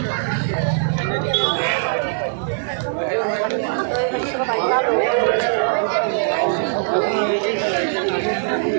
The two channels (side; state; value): left; silent; digital silence